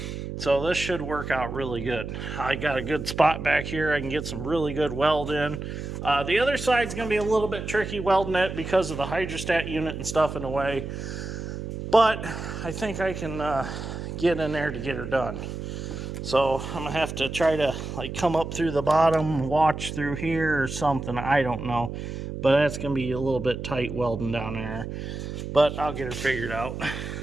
So this should work out really good. I got a good spot back here. I can get some really good weld in. The other side's going to be a little bit tricky welding it because of the hydrostat unit and stuff in the way. But I think I can get in there to get her done. So I'm going to have to try to like come up through the bottom, watch through here or something. I don't know. But that's going to be a little bit tight welding down there. But I'll get her figured out.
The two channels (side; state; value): right; noise; hum, 7 dB below the sound